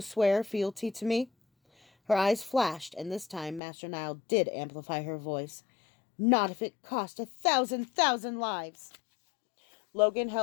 swear fealty to me? Her eyes flashed, and this time Master Nile did amplify her voice. Not if it cost 1,000 lives. Logan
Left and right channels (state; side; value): drops out; right; at 3.6 s